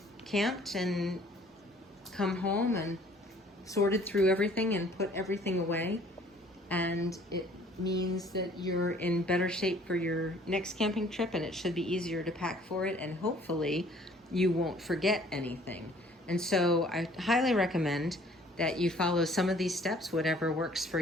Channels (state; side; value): normal; both; correlation 0.56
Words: camped and come home and sorted through everything and put everything away. And it means that you're in better shape for your next camping trip, and it should be easier to pack for it, and hopefully you won't forget anything. And so I highly recommend that you follow some of these steps, whatever works for